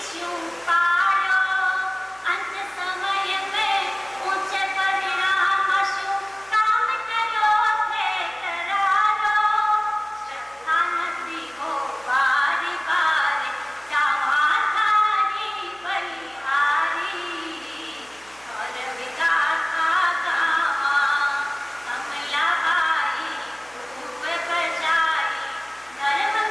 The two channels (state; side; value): noise; right; hum, 28 dB below the sound